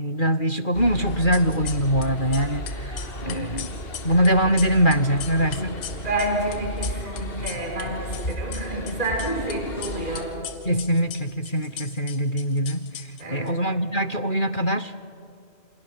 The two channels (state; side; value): late; right; 2.4 ms